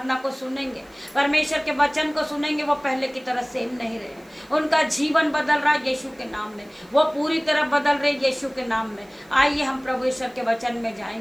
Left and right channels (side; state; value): right; noise; hiss, 30 dB below the sound